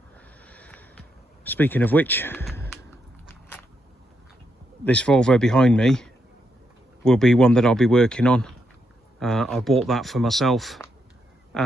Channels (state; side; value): normal; both; correlation 0.80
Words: Speaking of which, this Volvo behind me will be one that I'll be working on. I bought that for myself